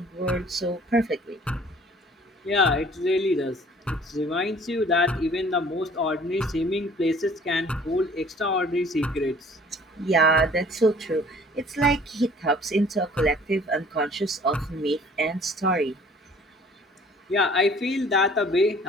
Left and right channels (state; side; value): normal; both; correlation 0.52